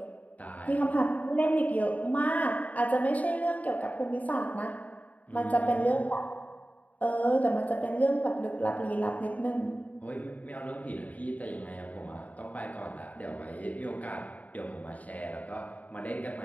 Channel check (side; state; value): right; late; 0.072 ms